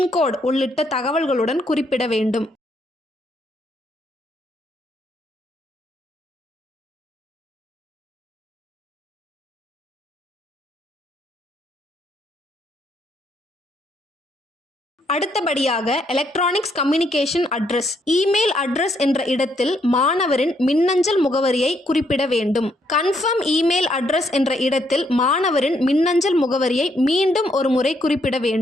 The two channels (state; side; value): normal; both; correlation 0.73